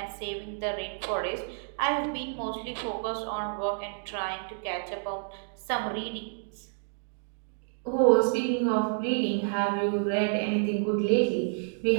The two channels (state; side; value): silent; left; digital silence